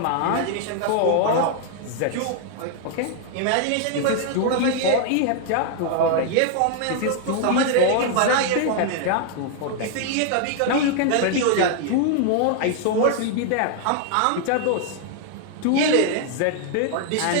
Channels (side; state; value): both; different; correlation 0.00